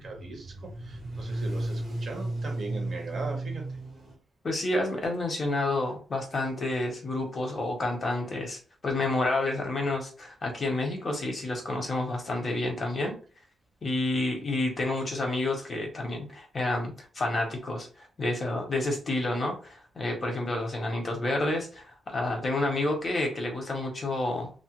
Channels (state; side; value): normal; both; correlation 0.81